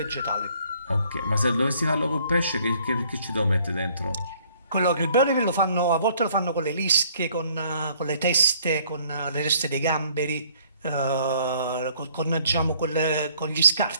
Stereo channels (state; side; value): inverted; both; correlation -0.61